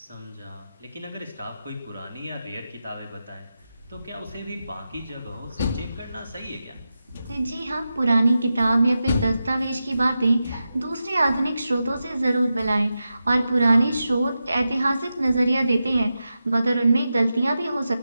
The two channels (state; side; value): inverted; both; correlation -0.91